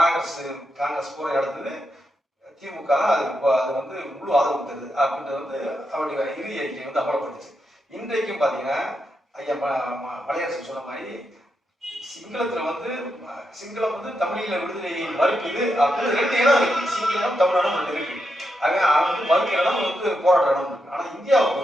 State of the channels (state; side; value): normal; both; correlation 0.84